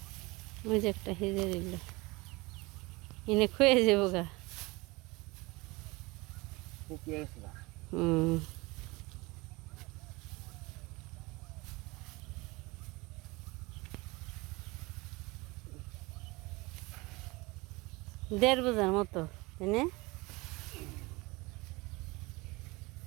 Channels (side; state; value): left; quieter; 23.8 dB